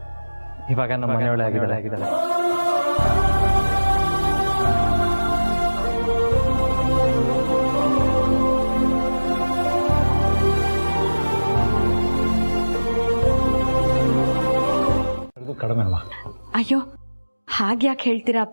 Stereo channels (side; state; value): both; inverted; correlation -1.00